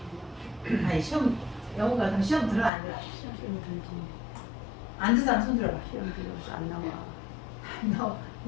아니 시험 영어 같은 시험 들어 안 들어? 시험 들지. 안 듣는 사람 손 들어봐. 시험 들어서 안 나와. 안 나와.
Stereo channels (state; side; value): drops out; right; at 2.7 s